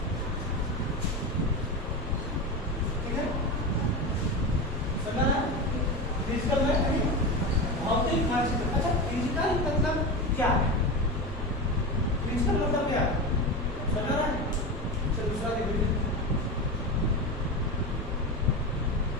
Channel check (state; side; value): normal; both; correlation 0.22